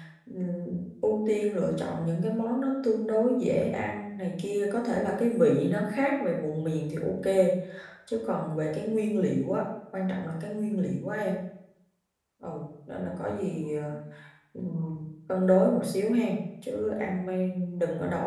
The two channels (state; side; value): identical; both; correlation 1.00